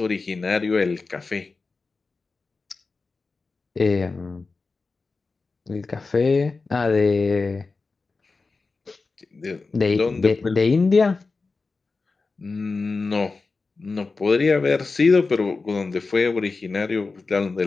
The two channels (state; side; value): quieter; right; 4.0 dB